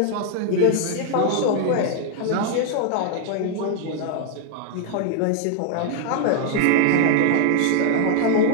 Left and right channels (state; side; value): different; both; correlation 0.00